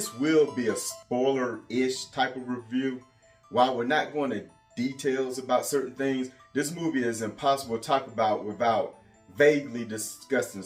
will be a spoiler-ish type of review. While we're not going to details about certain things, this movie is impossible to talk about without vaguely discussing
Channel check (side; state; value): both; identical; correlation 1.00